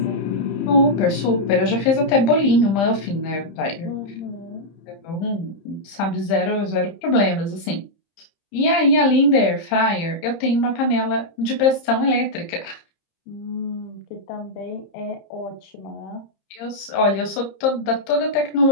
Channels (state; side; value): late; right; 30 ms